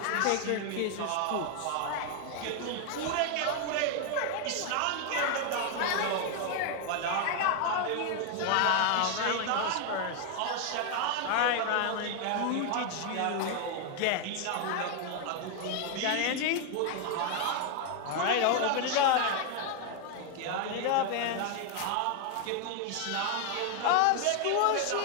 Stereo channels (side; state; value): both; different; correlation 0.00